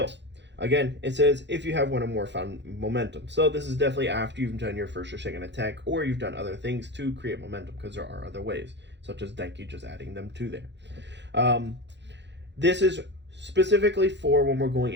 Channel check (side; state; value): left; late; 0.52 ms